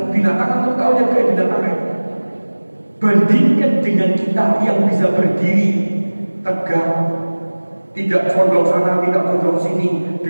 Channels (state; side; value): inverted; both; correlation -1.00